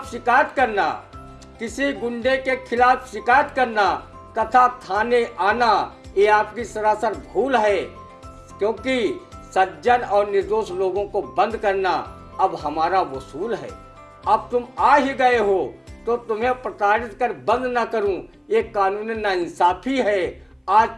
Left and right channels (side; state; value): both; identical; correlation 1.00